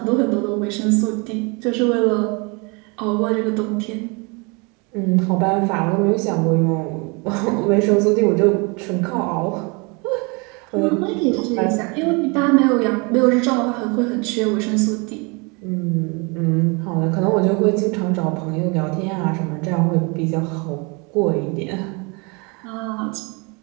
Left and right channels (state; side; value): quieter; left; 30.2 dB